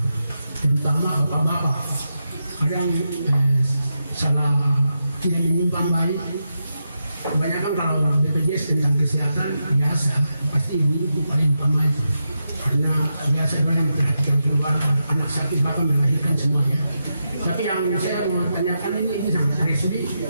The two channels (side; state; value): both; inverted; correlation -0.86